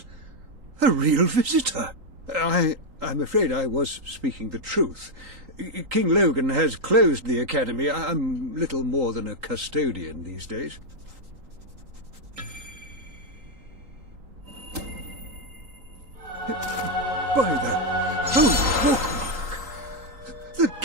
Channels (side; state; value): left; late; 3.8 ms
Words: A real visitor! I'm afraid I was speaking the truth. King Logan has closed the academy. I'm little more than a custodian these days. By the holy bookmark! The